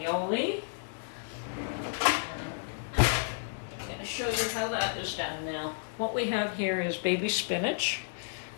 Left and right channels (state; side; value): silent; right; 57 dB below the other